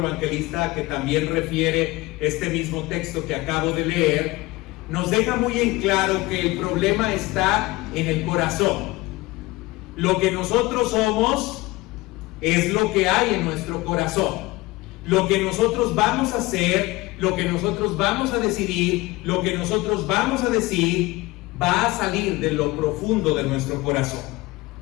que también refiere este mismo texto que acabo de leer, nos deja muy en claro que el problema está en el corazón. Lo que nosotros somos es lo que hay en nuestro corazón. Lo que nosotros vamos a hacer, lo que nosotros vamos a decidir, lo que nosotros vamos a decir, va a salir de lo profundo de nuestro corazón.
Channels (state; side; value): quieter; right; 20.9 dB